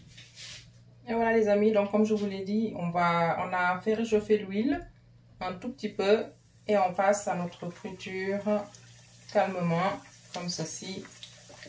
Et voilà les amis, donc comme je vous l'ai dit, on a fait réchauffer l'huile un tout petit peu et on passe à notre friture calmement comme ceci.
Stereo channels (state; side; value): identical; both; correlation 1.00